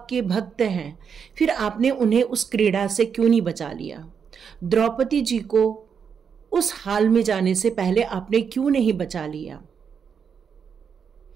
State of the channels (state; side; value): quieter; left; 6.8 dB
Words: भक्त हैं, फिर आपने उन्हें उस क्रीड़ा से क्यों नहीं बचा लिया? द्रौपदी जी को उस हाल में जाने से पहले आपने क्यों नहीं बचा लिया?